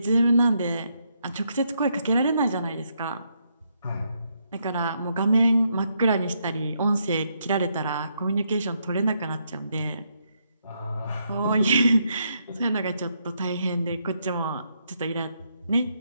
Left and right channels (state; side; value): inverted; both; correlation -0.77